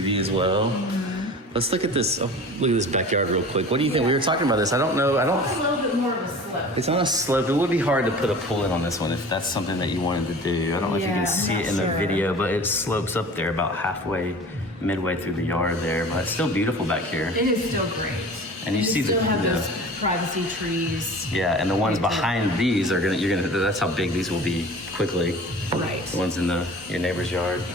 as well. Let's look at this. Oh, look at this backyard real quick. What do you think? We were talking about this. I don't know. It's a little bit more of a slope. It's on a slope. It would be hard to put a pool in on this one if that's something that you wanted to do. I don't know if you can see it in the video, but it slopes up there about midway through the yard there. But it's still beautiful back here. It is still great. And you see still have those privacy trees. Yeah, and the ones behind these are that's how big these will be quickly. Right. The ones in your neighbor's yard.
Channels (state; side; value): normal; both; correlation 0.40